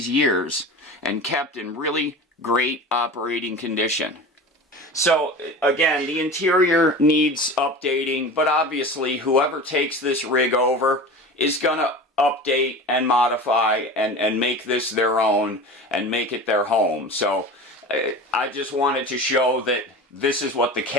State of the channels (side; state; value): both; normal; correlation 0.33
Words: years and kept in really great operating condition. So again, the interior needs updating, but obviously whoever takes this rig over is going to update and modify and make this their own and make it their home. So I just wanted to show that this is what the